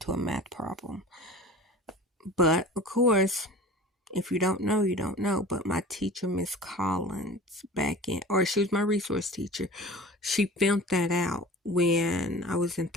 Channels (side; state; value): both; normal; correlation 0.39